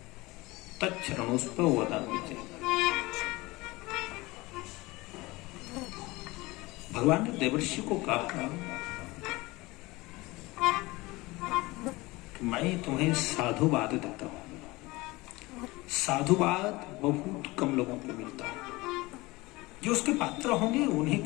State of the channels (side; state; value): right; quieter; 21.7 dB